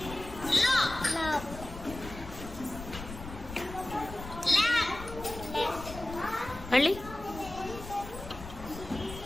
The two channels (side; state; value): left; noise; rumble, 12 dB below the sound